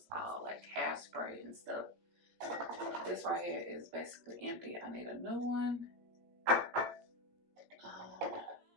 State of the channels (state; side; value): late; left; 17 ms